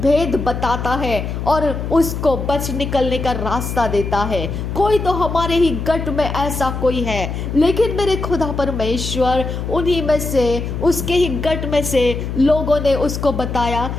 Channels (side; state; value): left; noise; hum, 5 dB below the sound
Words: बताता है और उसको बच निकलने का रास्ता देता है, कोई तो हमारे ही गट में ऐसा कोई है। लेकिन मेरे खुदा परमेश्वर उन्हीं में से, उसके ही गट में से लोगों ने उसको बताया